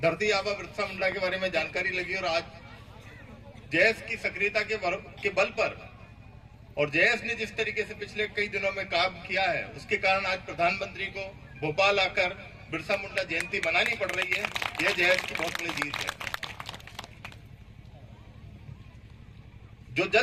धरती आबा बिरसा मुंडा के बारे में जानकारी लगी और आज जैस की सक्रियता के बल पर और जैस ने जिस तरीके से पिछले कई दिनों में काम किया है, उसके कारण आज प्रधानमंत्री को भोपाल आकर बिरसा मुंडा जयंती मनानी पड़ रही है। यह जैस की बहुत बड़ी जीत है। जो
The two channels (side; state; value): both; identical; correlation 1.00